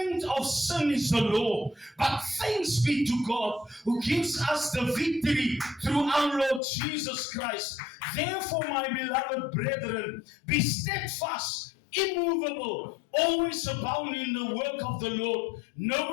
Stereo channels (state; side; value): drops out; right; at 6.6 s